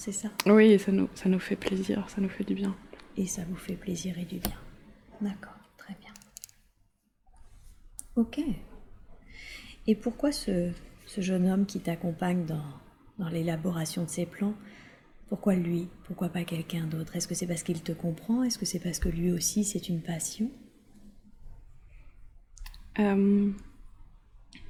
ça? Oui, et ça nous fait plaisir, ça nous fait du bien. Et ça vous fait plaisir et du bien. D'accord, très bien. Ok. Et pourquoi ce jeune homme qui t'accompagne dans l'élaboration de ces plans, pourquoi lui? Pourquoi pas quelqu'un d'autre? Est-ce que c'est parce qu'il te comprend? Est-ce que c'est parce que lui aussi c'est une passion? Je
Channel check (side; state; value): both; identical; correlation 1.00